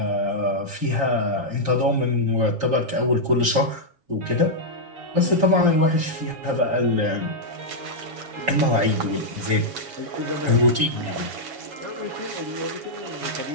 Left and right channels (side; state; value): left; late; 7.2 ms